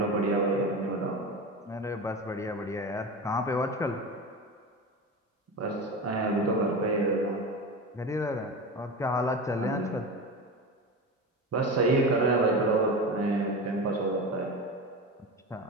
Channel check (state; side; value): normal; both; correlation 0.26